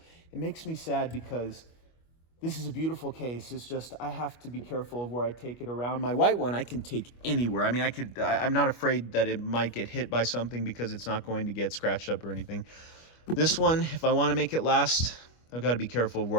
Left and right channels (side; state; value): right; late; 25 ms